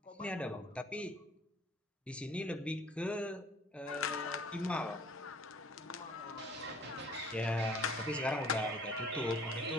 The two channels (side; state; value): both; normal; correlation 0.53